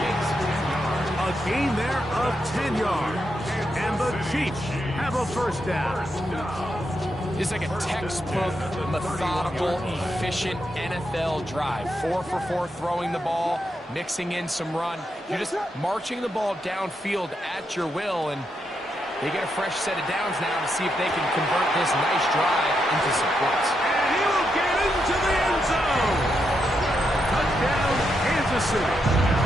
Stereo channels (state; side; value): normal; both; correlation 0.82